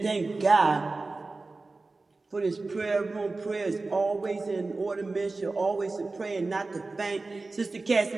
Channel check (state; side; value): quieter; left; 3.5 dB